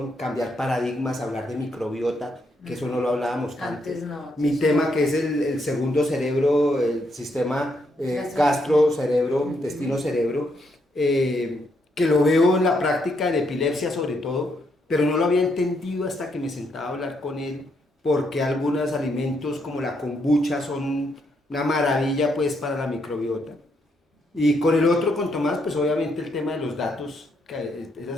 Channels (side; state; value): both; normal; correlation 0.76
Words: cambiar paradigmas, hablar de microbiota, que eso no lo hablábamos Antes no. Mi tema que es el segundo cerebro, el sistema gastro-cerebro, intestino-cerebro, que lo veo en la práctica en epilepsia sobre todo, pero no lo había entendido hasta que me sentaba a hablar con él, porque algunos alimentos como la kombucha son una maravilla pues para la microbiota. Y con el otro, con Tomás, pues obviamente el tema de los datos, que esa